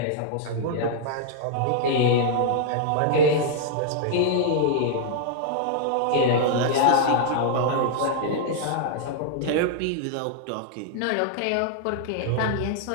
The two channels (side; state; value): both; different; correlation -0.01